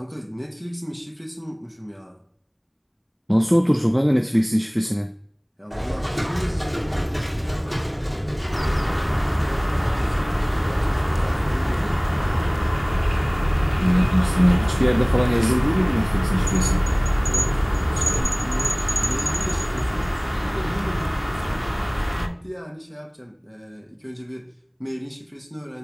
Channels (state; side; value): identical; both; correlation 1.00